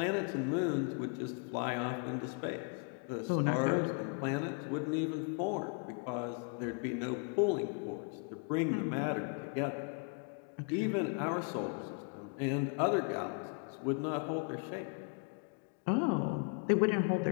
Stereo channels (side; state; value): right; quieter; 39.4 dB